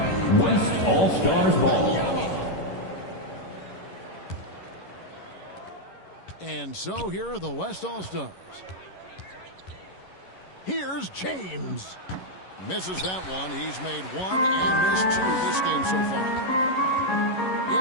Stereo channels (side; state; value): right; late; 11 ms